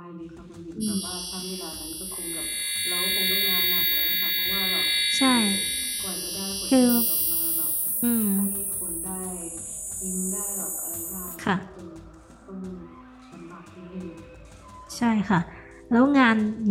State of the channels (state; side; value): identical; both; correlation 1.00